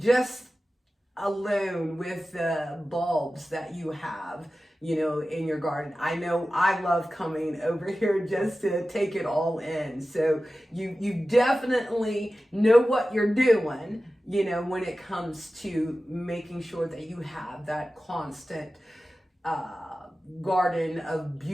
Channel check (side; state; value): both; normal; correlation 0.95